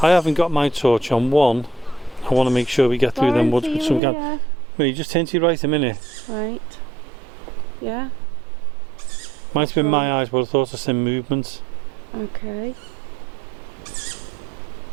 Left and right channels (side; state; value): left; drops out; at 4.0 s